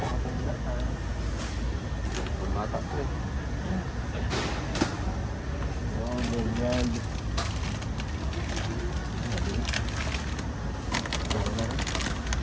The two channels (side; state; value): both; identical; correlation 1.00